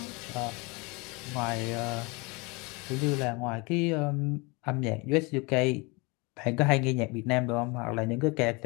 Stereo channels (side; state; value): right; quieter; 27.6 dB